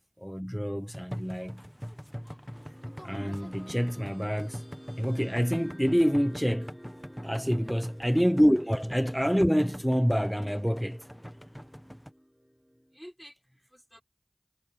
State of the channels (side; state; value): both; identical; correlation 1.00